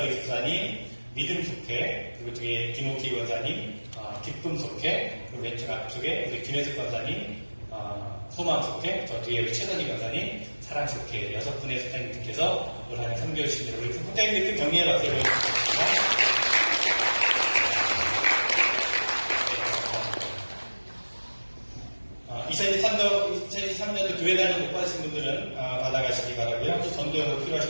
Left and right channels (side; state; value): both; inverted; correlation -1.00